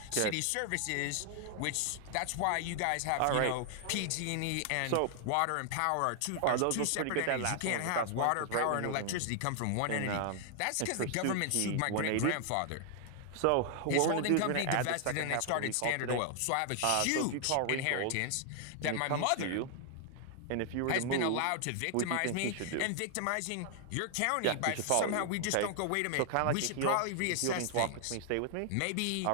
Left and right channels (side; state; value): both; different; correlation 0.00